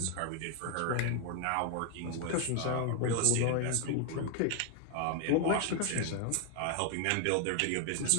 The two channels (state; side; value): different; both; correlation 0.00